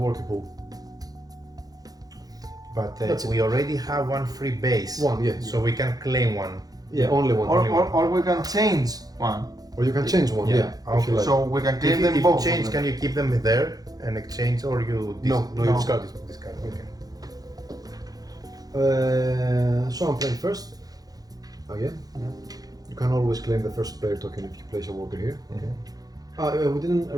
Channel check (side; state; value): left; late; 0.18 ms